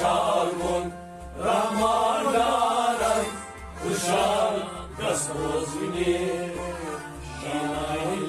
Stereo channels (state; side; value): identical; both; correlation 1.00